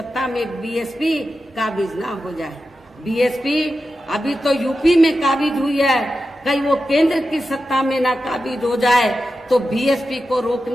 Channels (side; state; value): both; normal; correlation 0.91